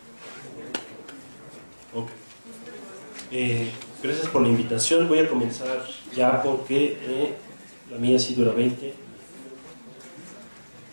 Ok. Gracias por la invitación. Voy a comenzar ya porque la mía sí dura 20.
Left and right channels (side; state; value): both; inverted; correlation -1.00